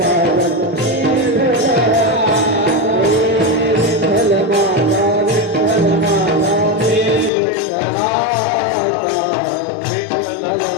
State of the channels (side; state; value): right; drops out; at 7.3 s